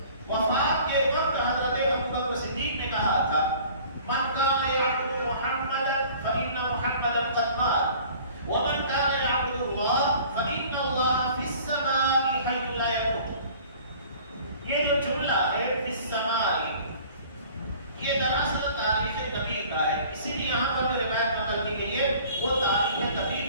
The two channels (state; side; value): inverted; both; correlation -0.49